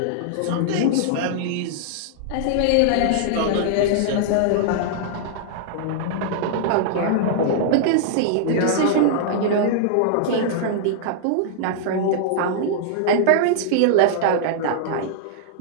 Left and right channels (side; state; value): both; different; correlation -0.01